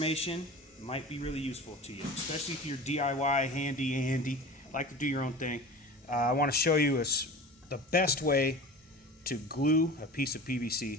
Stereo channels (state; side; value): normal; both; correlation 0.36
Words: might be really useful to you, especially if you're DIY, handy, like to do your own thing. I want to show you the best way to glue a piece of